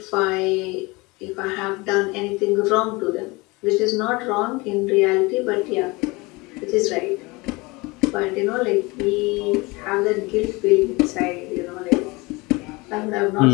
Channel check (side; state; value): right; quieter; 24.5 dB